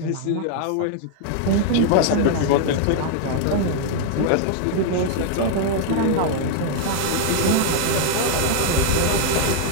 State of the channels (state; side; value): different; both; correlation 0.00